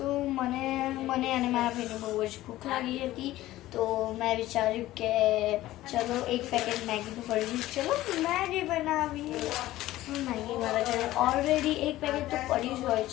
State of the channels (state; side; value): quieter; right; 15.8 dB